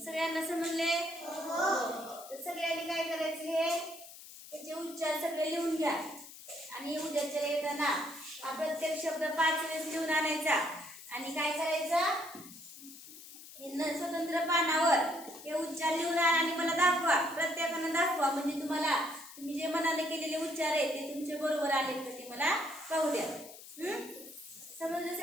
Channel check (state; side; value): noise; left; hiss, 16 dB below the sound